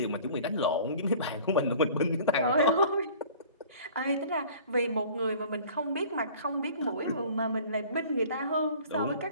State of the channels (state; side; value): inverted; both; correlation -0.46